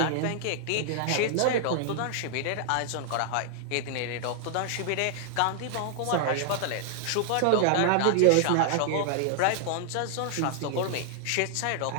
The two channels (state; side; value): different; both; correlation -0.01